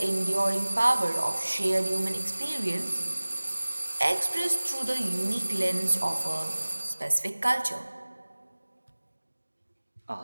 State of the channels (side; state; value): both; inverted; correlation -1.00